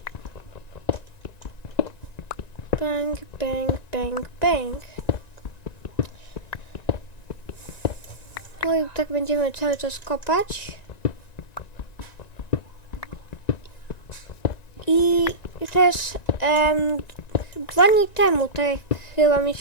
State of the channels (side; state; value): right; late; 1.9 ms